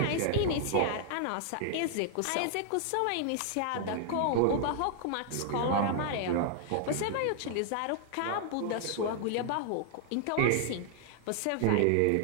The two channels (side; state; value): both; different; correlation 0.00